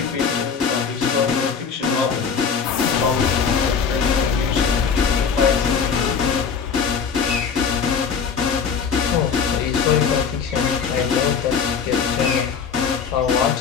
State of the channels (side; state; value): right; quieter; 6.3 dB